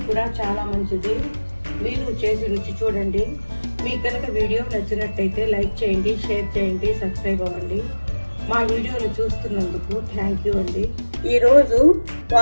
కూడా చాలా మంచిది. మీరు చేసి రుచి చూడండి. మీకు కనుక వీడియో నచ్చినట్టయితే లైక్ చేయండి, షేర్ చేయండి, సబ్స్క్రైబ్ అవ్వండి. మా వీడియోలు చూస్తున్నందుకు థ్యాంక్ యూ అండి. ఈరోజు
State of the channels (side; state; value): both; inverted; correlation -1.00